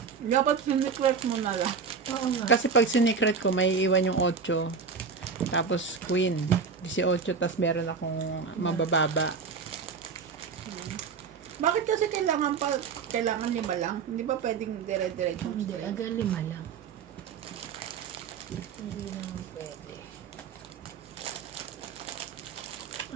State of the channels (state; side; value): quieter; left; 5.6 dB